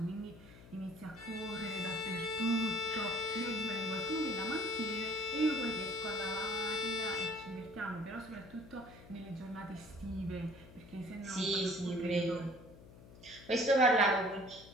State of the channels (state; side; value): noise; left; hum, 19 dB below the sound